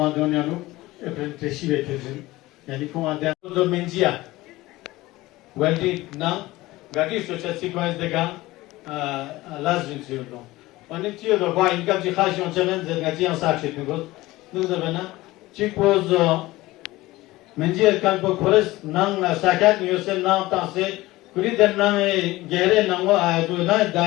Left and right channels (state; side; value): quieter; right; 18.7 dB